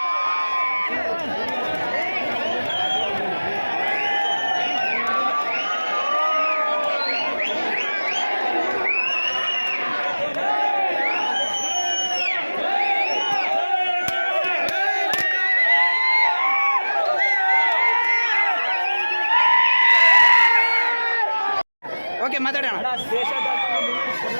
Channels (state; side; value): inverted; both; correlation -1.00